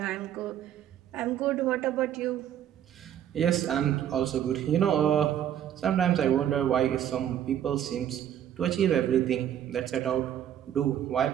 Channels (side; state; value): left; quieter; 10.4 dB